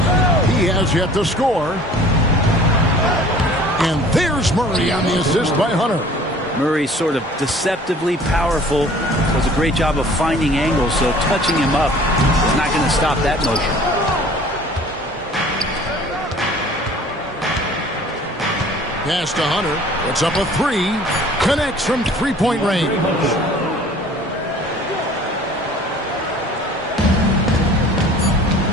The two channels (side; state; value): both; normal; correlation 0.49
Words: He has yet to score. And there's Murray on the assist by Hunter. Murray sort of deceptively powerful. Does a great job of finding angles, so touching him up is not going to stop that motion. Pass to Hunter. Puts up a three. Connects from three-point range.